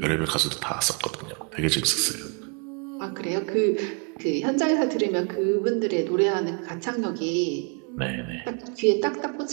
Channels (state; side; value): quieter; left; 36.5 dB